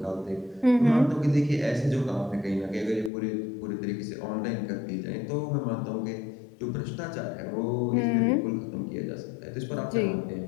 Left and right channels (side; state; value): right; drops out; at 3.1 s